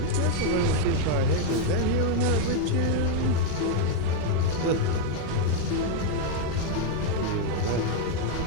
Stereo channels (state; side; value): different; both; correlation 0.01